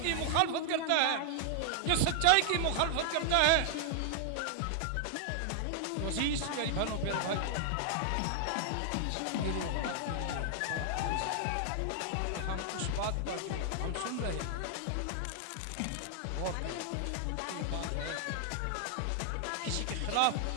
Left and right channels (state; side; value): different; both; correlation 0.00